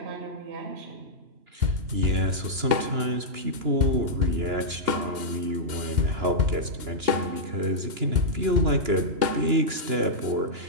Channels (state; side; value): late; left; 2.9 ms